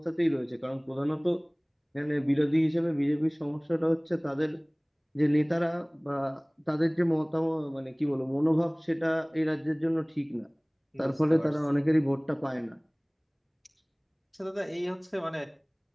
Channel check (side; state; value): both; identical; correlation 1.00